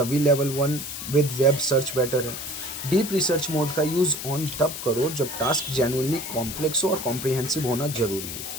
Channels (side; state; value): left; noise; hiss, 7 dB below the sound